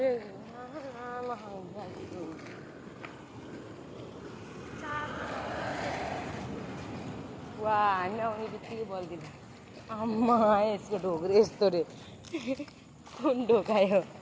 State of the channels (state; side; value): identical; both; correlation 1.00